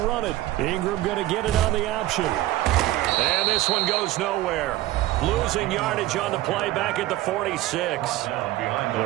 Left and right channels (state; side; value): quieter; left; 16.1 dB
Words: it. Ingram going to get it on the option. And this one goes nowhere. Losing yardage on the play back at the 46.